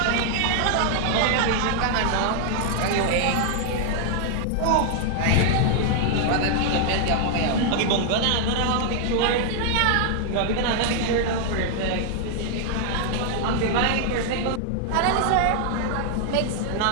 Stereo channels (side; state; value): both; different; correlation 0.00